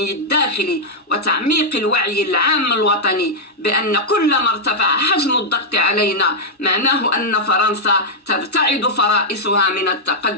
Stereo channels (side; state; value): both; normal; correlation -0.04